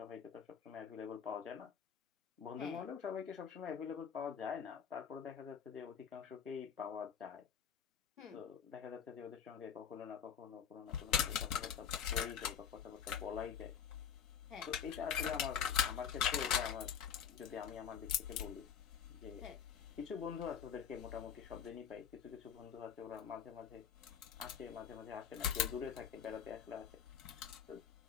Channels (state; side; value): quieter; right; 7.8 dB